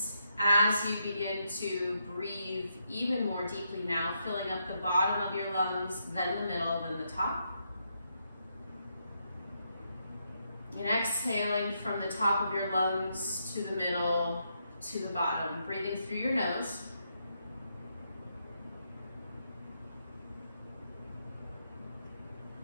as you begin to breathe even more deeply now, filling up the bottom of your lungs, then the middle, then the top. And exhaling from the top of your lungs to the middle, to the bottom, breathing through your nose.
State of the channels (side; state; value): both; inverted; correlation -0.80